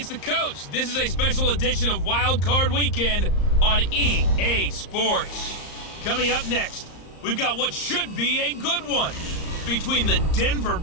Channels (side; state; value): right; late; 34 ms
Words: the coach. This is a special edition of Wildcard Weekend on EA Sports. Coming up next, we've got what should be a good one between the Denver